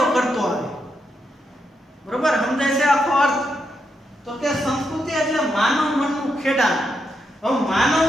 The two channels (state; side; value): normal; both; correlation 0.82